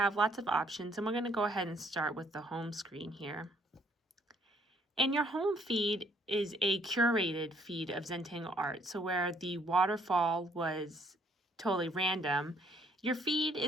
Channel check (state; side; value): normal; both; correlation 0.65